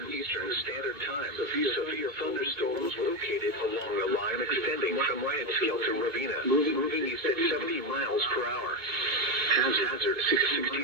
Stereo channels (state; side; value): late; left; 2.2 ms